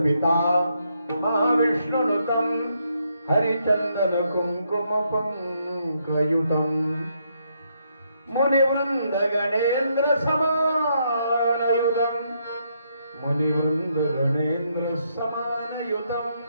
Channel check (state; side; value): inverted; both; correlation -0.76